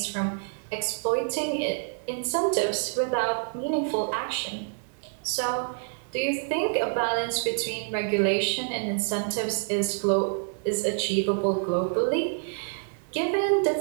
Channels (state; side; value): silent; left; digital silence